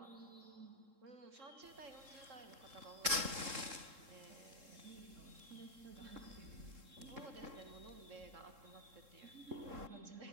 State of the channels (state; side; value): late; left; 3.7 ms